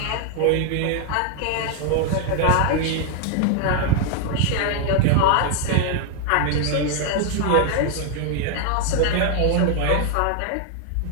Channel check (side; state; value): both; different; correlation 0.00